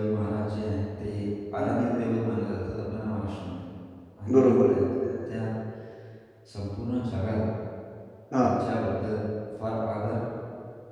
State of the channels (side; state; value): both; identical; correlation 1.00